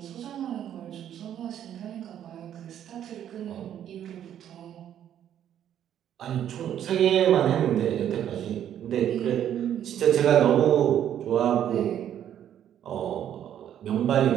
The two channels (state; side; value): quieter; left; 10.3 dB